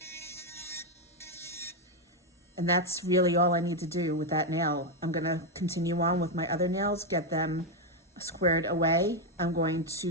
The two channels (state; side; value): normal; both; correlation 0.04